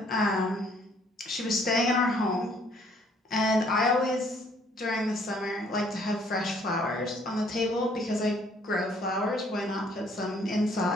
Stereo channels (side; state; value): both; normal; correlation 0.63